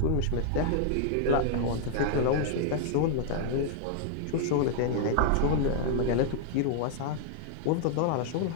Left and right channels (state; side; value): different; both; correlation -0.01